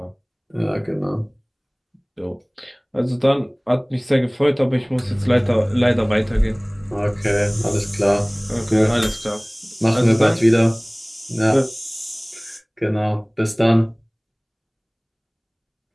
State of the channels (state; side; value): identical; both; correlation 1.00